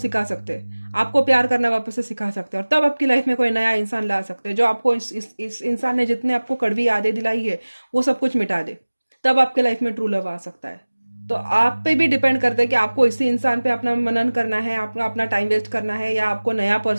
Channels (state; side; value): inverted; both; correlation -1.00